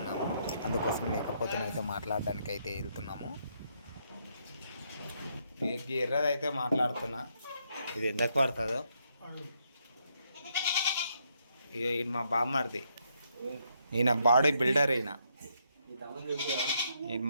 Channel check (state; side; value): inverted; both; correlation -0.75